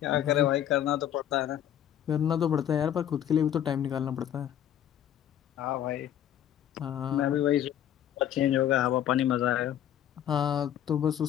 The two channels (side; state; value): right; quieter; 10.7 dB